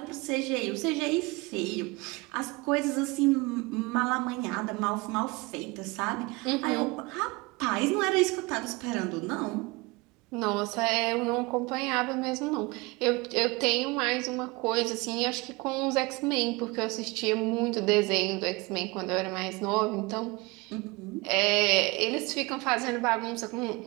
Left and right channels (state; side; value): quieter; left; 24.9 dB